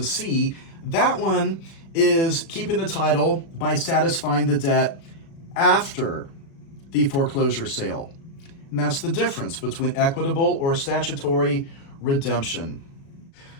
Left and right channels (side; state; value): right; late; 36 ms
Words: C, that one is keeping the title by satisfying the debt after the foreclosure sale. And that's the difference between equitable or statutory redemption.